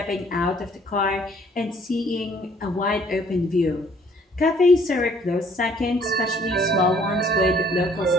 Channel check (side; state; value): both; normal; correlation 0.60